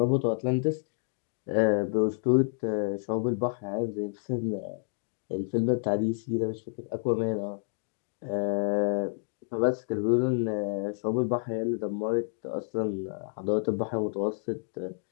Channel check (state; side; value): silent; right; digital silence